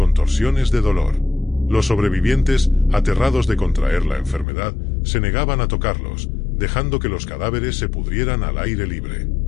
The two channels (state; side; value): drops out; right; at 4.5 s